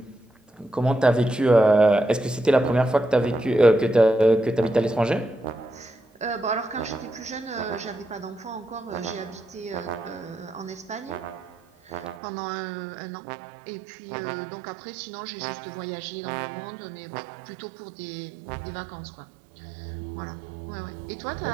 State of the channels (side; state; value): left; drops out; at 12.2 s